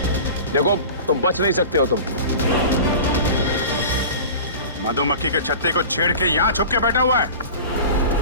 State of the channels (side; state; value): both; inverted; correlation -0.36